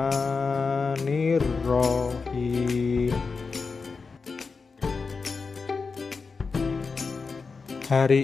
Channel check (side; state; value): right; quieter; 4.7 dB